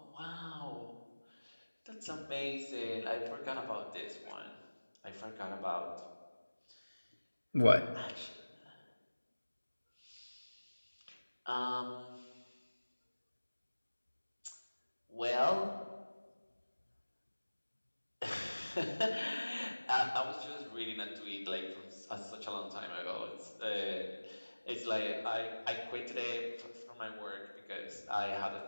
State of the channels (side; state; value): both; inverted; correlation -1.00